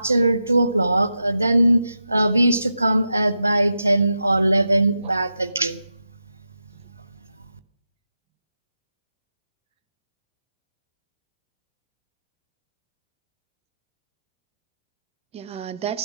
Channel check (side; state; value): both; inverted; correlation -0.88